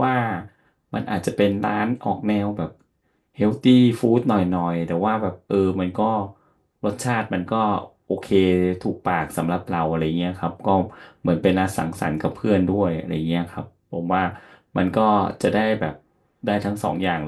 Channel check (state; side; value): identical; both; correlation 1.00